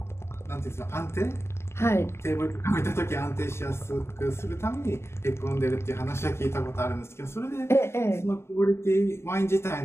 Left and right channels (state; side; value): late; right; 0.12 ms